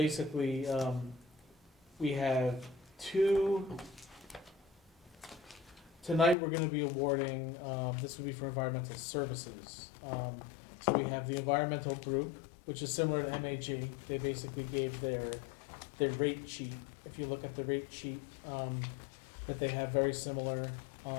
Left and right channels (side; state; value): right; drops out; at 6.4 s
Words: we have two, tonight we're gonna be awarding, this would be for environmental services. So we have the environmental group, which is similar to MHE. They basically gave their rate sheet. If you look at the rate sheet, that they have very similar.